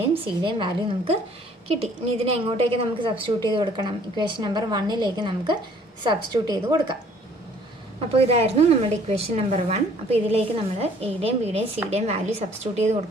സിയുടെയും വാല്യൂ നമുക്ക് കിട്ടി. ഇനി ഇതിനെ എങ്ങോട്ടേക്ക് നമുക്ക് സബ്സ്റ്റിറ്റ്യൂട്ട് ചെയ്ത് കൊടുക്കണം, ഇക്വേഷൻ നമ്പർ 1ലേക്ക് നമുക്ക് സബ്സ്റ്റിറ്റ്യൂട്ട് ചെയ്ത് കൊടുക്കാം. അപ്പോൾ ഇതായിരുന്നു നമ്മുടെ ഇക്വേഷൻ നമ്പർ 1. അപ്പോൾ ഇതിലേക്ക് നമ്മൾ എയുടെയും ബിയുടെയും സിയുടെയും വാല്യൂ സബ്സ്റ്റിറ്റ്യൂട്ട് ചെയ്ത്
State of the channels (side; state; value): both; normal; correlation 0.57